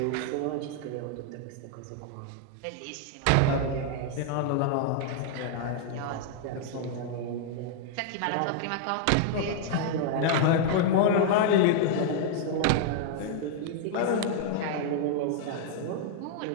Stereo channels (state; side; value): different; both; correlation 0.00